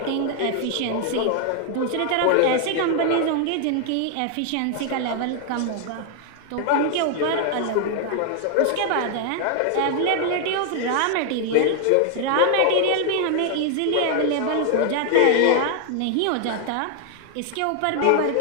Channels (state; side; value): different; both; correlation 0.00